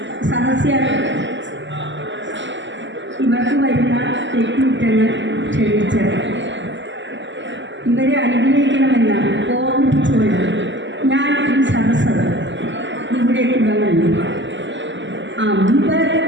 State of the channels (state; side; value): late; left; 0.54 ms